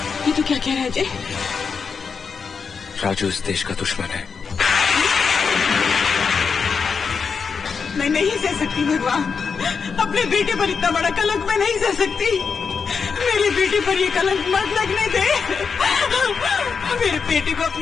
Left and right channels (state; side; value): quieter; right; 5.7 dB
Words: ये तो क्या कह रहा है अजय? राजू इस देश का दुश्मन है। मैं नहीं सह सकती भगवान, अपने बेटे पर इतना बड़ा कलंक मैं नहीं सह सकती। मेरे बेटे पर ये कलंक मत लगने दे। मेरे बेटे को